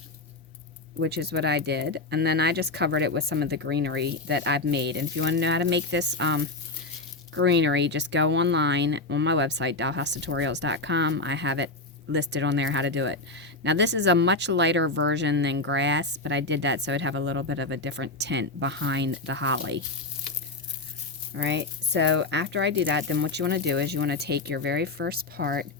which is what I did, and then I just covered it with some of the greenery that I've made. And if you want to know how to make this greenery, just go online on my website, dollhousetutorials.com. I have it listed on there how to do it. Now this is a much lighter version than grass, but I did that so it'd have a little bit of a different tint behind the holly. Alright, so after I do that, then what you want to do is you want to take your very first part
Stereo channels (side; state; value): right; quieter; 3.1 dB